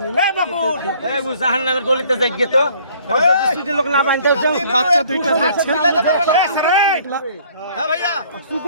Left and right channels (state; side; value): inverted; both; correlation -0.57